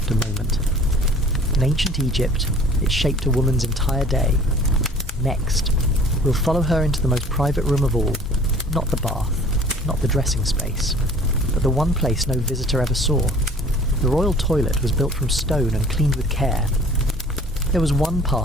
a moment. In ancient Egypt, it shaped a woman's entire day. Next, we'll follow her into the most private room of all, not the bath, not the dressing space, but the one place no visitor ever saw. The royal toilet was built from stone and cleaned with care. There was one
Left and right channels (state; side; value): normal; both; correlation 0.49